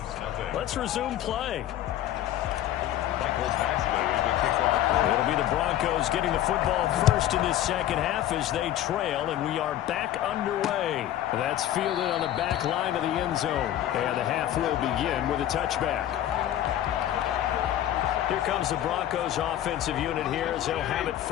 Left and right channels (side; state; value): right; quieter; 12.3 dB